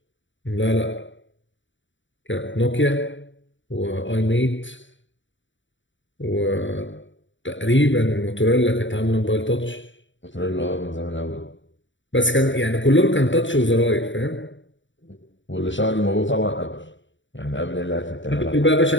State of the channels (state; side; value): late; right; 0.55 ms